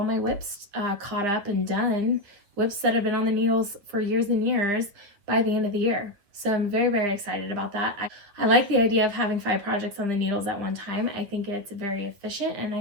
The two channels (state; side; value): late; left; 9.9 ms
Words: my whips caught up and done, whips that have been on the needles for years and years, by the end of the year. So I'm very, very excited about that. I like the idea of having 5 projects on the needles at one time. I think it's very efficient, and